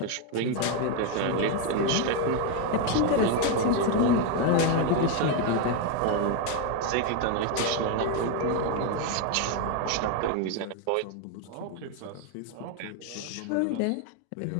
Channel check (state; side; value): different; both; correlation 0.02